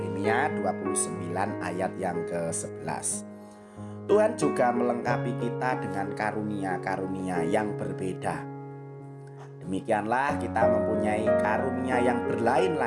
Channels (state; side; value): identical; both; correlation 1.00